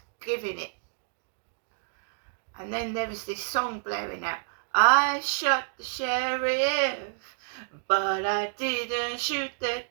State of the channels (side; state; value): left; silent; digital silence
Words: giving it. And then there was this song blaring out. I shot the sheriff, but I didn't shoot the